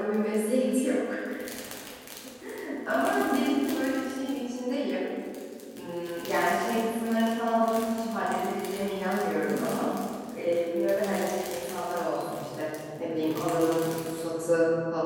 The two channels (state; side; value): identical; both; correlation 1.00